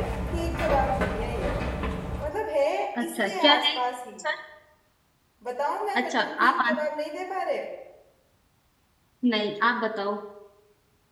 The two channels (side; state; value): both; identical; correlation 1.00